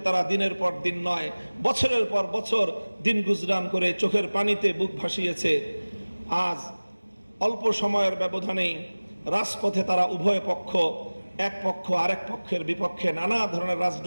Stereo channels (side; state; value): both; inverted; correlation -1.00